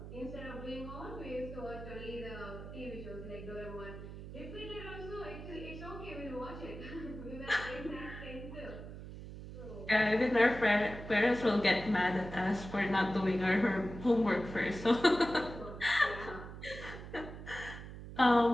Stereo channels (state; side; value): noise; right; hum, 11 dB below the sound